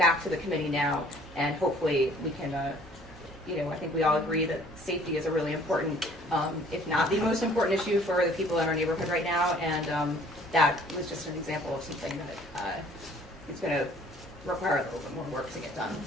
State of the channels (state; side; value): normal; both; correlation 0.55